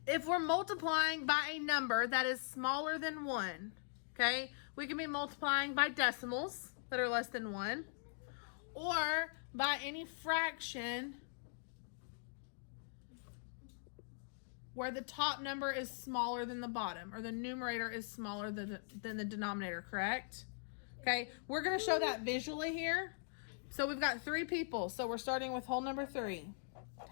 If we're multiplying by a number that is smaller than 1, okay, we can be multiplying by decimals that are less than 1 or by any fraction where the top number is smaller than the bottom or the numerator is smaller than the denominator, correct? Okay, we're going to show that visually here. So we've got 3 people. So we're starting with whole number 3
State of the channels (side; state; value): right; silent; digital silence